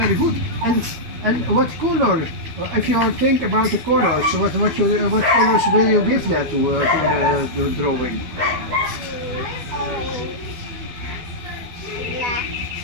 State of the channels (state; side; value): late; left; 12 ms